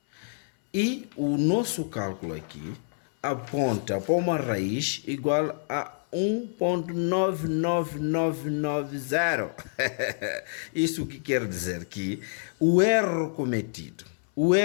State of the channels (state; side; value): silent; right; 60 dB below the other